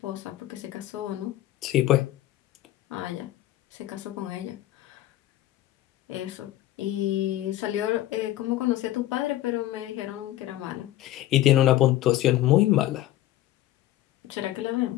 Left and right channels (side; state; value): right; quieter; 14.4 dB